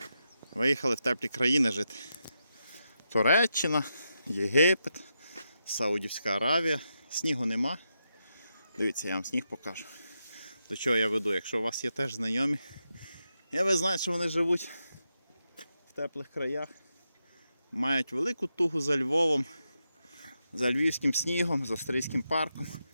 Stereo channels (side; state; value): both; inverted; correlation -0.86